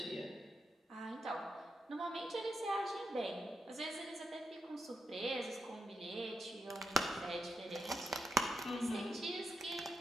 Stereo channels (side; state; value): both; normal; correlation 0.85